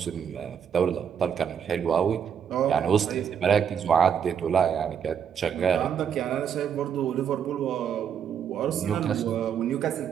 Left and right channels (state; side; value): quieter; left; 8.0 dB